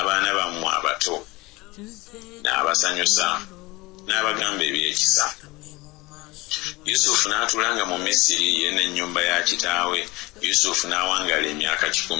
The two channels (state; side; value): quieter; right; 22.2 dB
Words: bammwe abato. N'abasanyusa, n'abagamba ebyekisa. Yusufu n'atuulanga mu Misiri ye n'ennyumba ya kitaawe. Yusufu n'awangaala emyaka